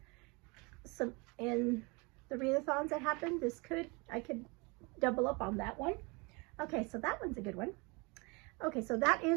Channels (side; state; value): left; quieter; 28.2 dB